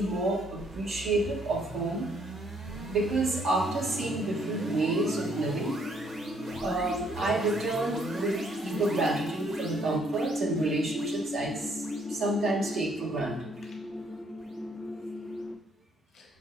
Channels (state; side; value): normal; both; correlation 0.67